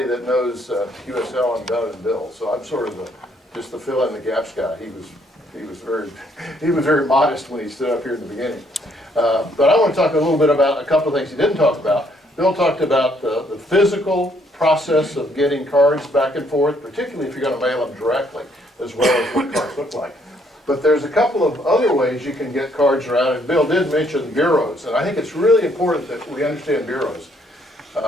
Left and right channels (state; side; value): normal; both; correlation 0.68